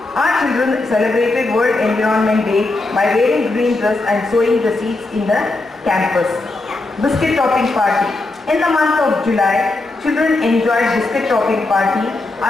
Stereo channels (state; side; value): quieter; right; 3.1 dB